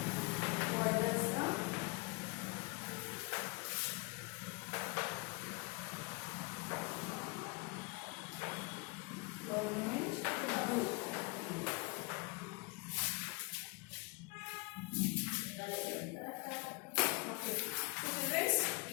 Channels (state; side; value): quieter; right; 28.8 dB